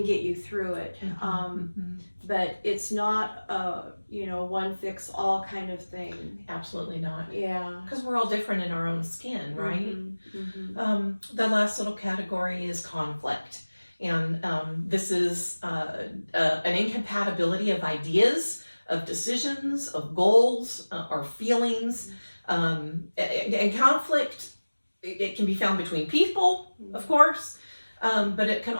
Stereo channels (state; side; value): inverted; both; correlation -1.00